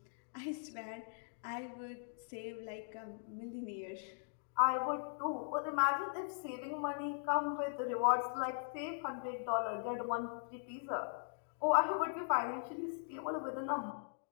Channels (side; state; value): right; silent; digital silence